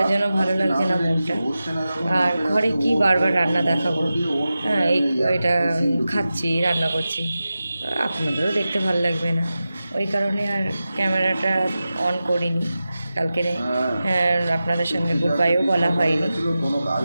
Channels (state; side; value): inverted; both; correlation -0.93